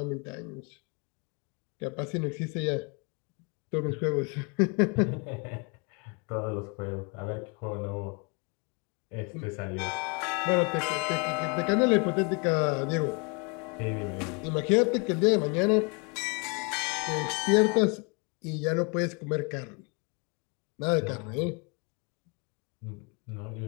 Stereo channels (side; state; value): right; quieter; 32.3 dB